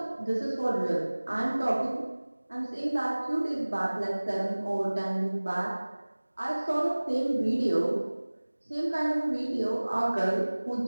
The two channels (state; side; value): inverted; both; correlation -1.00